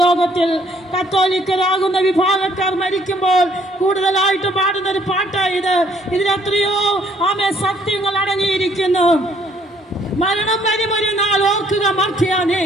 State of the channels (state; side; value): normal; both; correlation 0.64